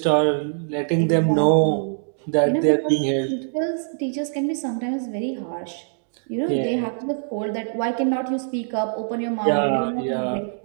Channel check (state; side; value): silent; left; digital silence